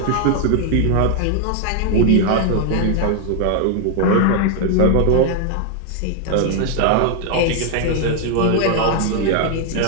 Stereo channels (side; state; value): both; different; correlation 0.00